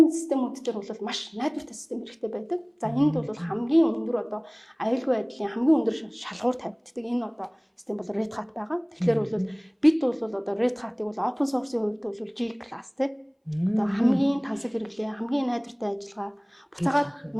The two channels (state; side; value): identical; both; correlation 1.00